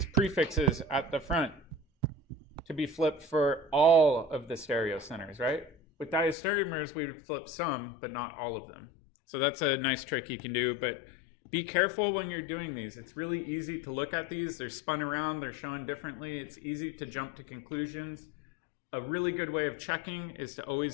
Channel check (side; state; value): right; drops out; at 6.4 s